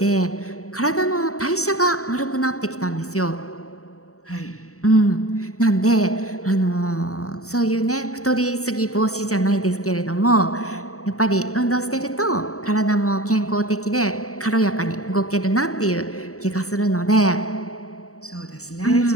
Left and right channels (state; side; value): late; right; 0.65 ms